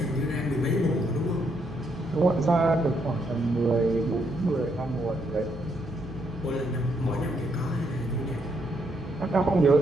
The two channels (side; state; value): both; normal; correlation 0.75